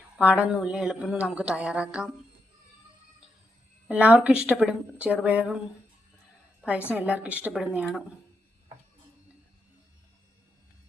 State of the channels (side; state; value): both; normal; correlation 0.83